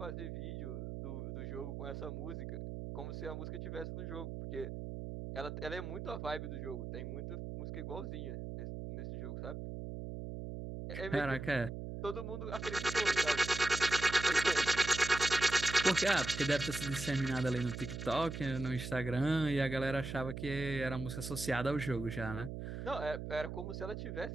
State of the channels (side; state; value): right; noise; hum, 7 dB below the sound